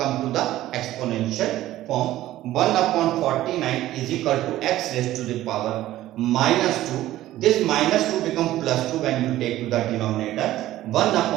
to the exponential form. 1 upon 49 is equal to x raised to the power minus 2. This minus 2 become plus 2 when you take to the denominator. 1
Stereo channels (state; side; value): quieter; left; 14.7 dB